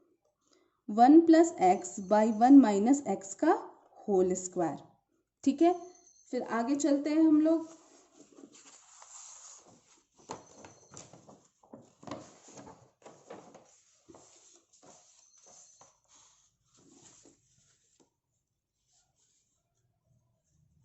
X by 1 minus X का होल स्क्वायर। ठीक है, फिर आगे चलते हैं हम लोग।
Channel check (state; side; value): identical; both; correlation 1.00